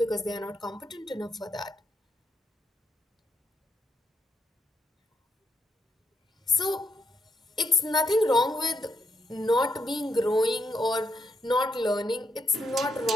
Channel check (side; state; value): both; normal; correlation 0.79